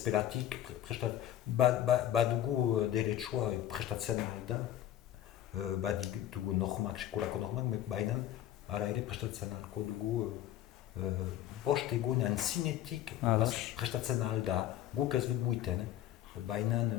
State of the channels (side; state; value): right; quieter; 12.1 dB